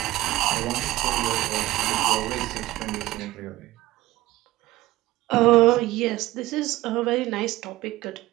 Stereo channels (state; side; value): quieter; left; 17.0 dB